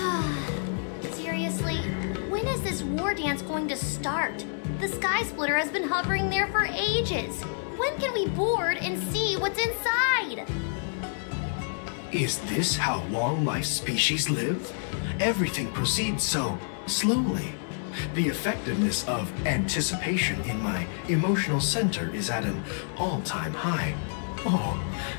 Seriously, when is this war dance going to start? The Sky Splitter has been hovering there for ages. When can we board and see what's inside? Is this how long-life species live? Everything proceeds so slowly. The effectiveness of anticipation in my emotional center is at an all-time high. Oh,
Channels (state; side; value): silent; right; 59 dB below the other